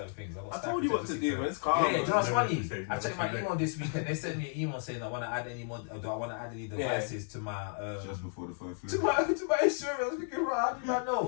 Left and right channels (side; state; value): right; silent; 56 dB below the other